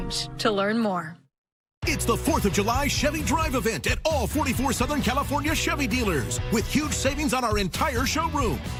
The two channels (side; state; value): both; identical; correlation 1.00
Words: to learn more. It's the 4th of July Chevy Drive event at all 44 Southern California Chevy dealers with huge savings on our entire showroom,